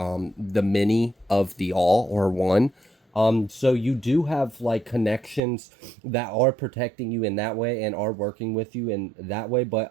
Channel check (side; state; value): left; drops out; at 5.4 s